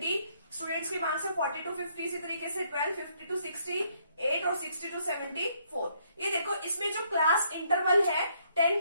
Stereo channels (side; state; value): both; inverted; correlation -0.70